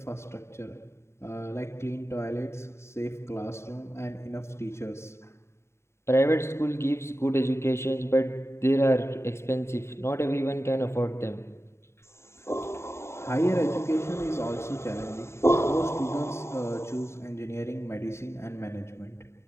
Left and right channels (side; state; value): right; late; 0.13 ms